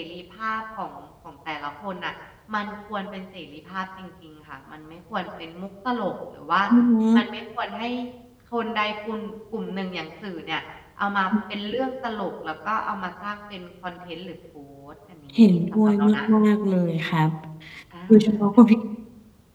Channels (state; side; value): identical; both; correlation 1.00